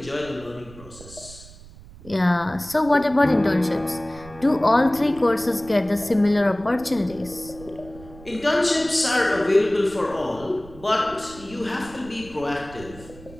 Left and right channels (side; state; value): right; noise; rumble, 19 dB below the sound